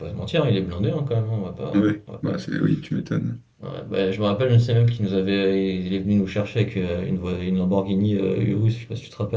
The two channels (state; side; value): identical; both; correlation 1.00